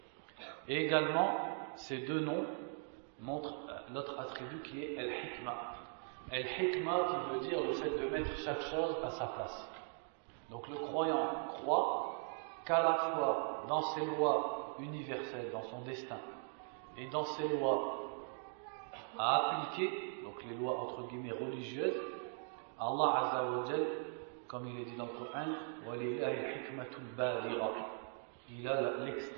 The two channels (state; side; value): silent; left; 51 dB below the other